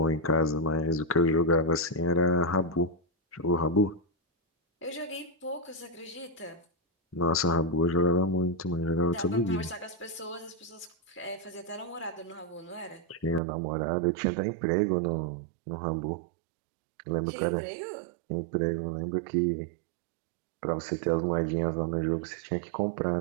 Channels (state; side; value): drops out; left; at 13.4 s